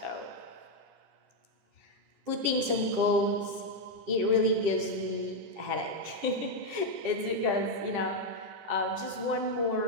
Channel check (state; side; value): late; left; 10 ms